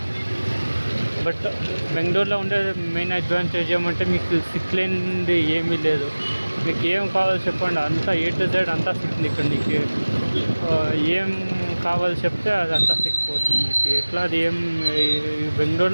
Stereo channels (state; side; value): inverted; both; correlation -1.00